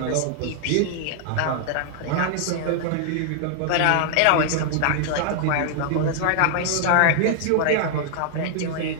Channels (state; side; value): different; both; correlation 0.00